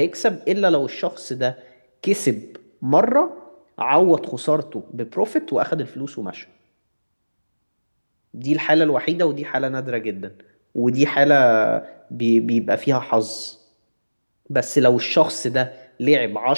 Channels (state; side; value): inverted; both; correlation -1.00